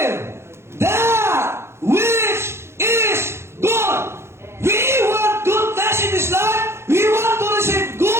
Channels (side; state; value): left; late; 0.12 ms